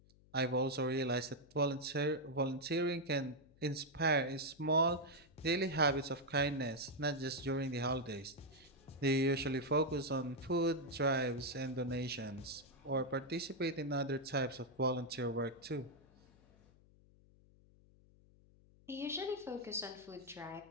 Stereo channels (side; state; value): left; noise; hum, 27 dB below the sound